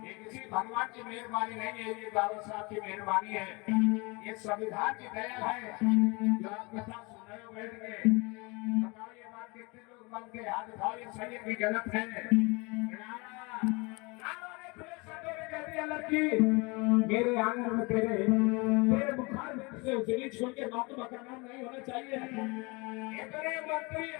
ये किसी भगवान की मेहरबानी नहीं है, ये बाबा साहब की मेहरबानी है, ये संविधान की दया है जो आप कथा सुन रहे हो बैठ के। बताओ ये बात कितने लोग मन के हाथ उठाओ, ये सही है कि गलत है? लड़की मेरे आंगन में तेरे बुखार में से उजली छोड़ के महात्मा का नाम नहीं होना चाहिए। इतने मंत्री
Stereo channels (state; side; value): quieter; right; 27.5 dB